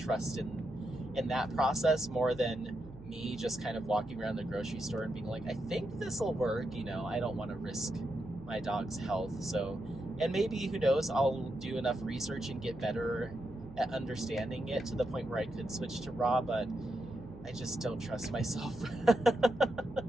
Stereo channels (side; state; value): right; noise; hum, 18 dB below the sound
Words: in that process more than me just kind of walking around the grocery store and being like, I think this will work. You know, I don't want to risk my dog's health. So, and maybe, who knows, I'll do enough research and get better at understanding it to the point where I could switch to raw, but I just don't trust myself.